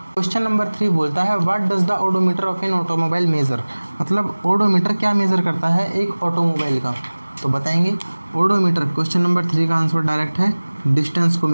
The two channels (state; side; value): inverted; both; correlation -1.00